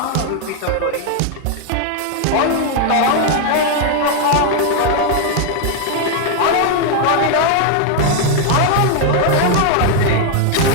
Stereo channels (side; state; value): both; different; correlation 0.00